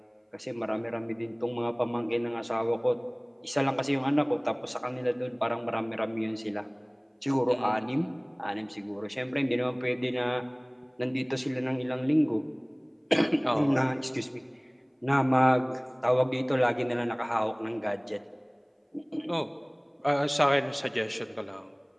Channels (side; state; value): both; identical; correlation 1.00